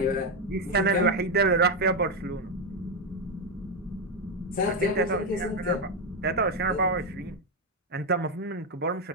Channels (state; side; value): normal; both; correlation 0.06